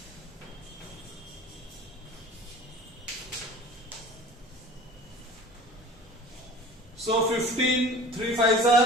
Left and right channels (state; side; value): normal; both; correlation 0.43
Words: so 15, 3 5s